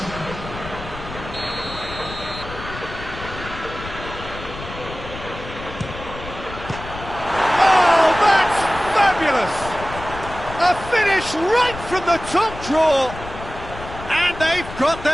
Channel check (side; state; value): left; noise; rumble, 12 dB below the sound